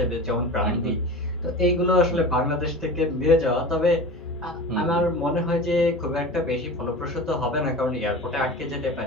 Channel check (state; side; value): normal; both; correlation 0.33